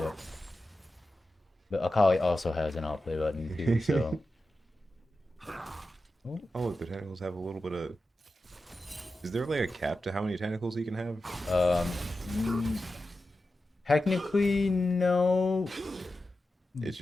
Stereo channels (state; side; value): normal; both; correlation 0.92